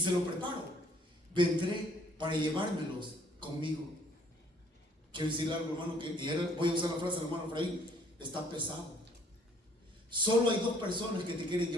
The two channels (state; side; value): normal; both; correlation 0.60